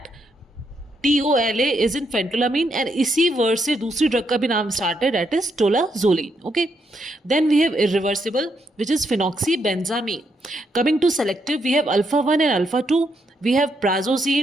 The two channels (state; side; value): normal; both; correlation 0.78